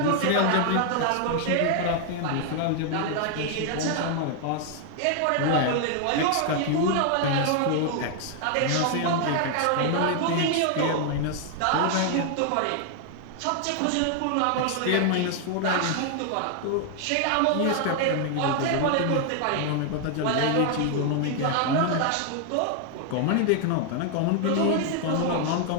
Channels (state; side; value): different; both; correlation 0.00